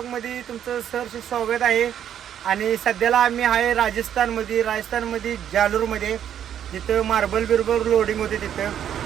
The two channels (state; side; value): quieter; left; 9.7 dB